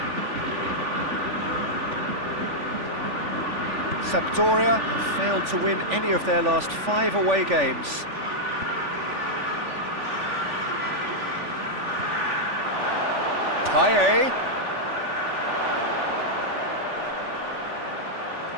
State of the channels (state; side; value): late; left; 3.5 ms